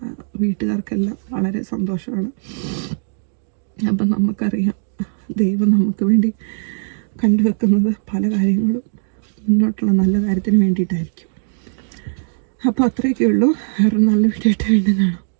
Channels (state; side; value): silent; left; digital silence